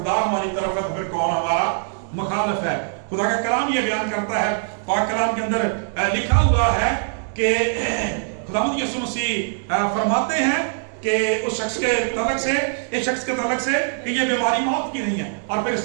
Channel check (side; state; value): left; silent; digital silence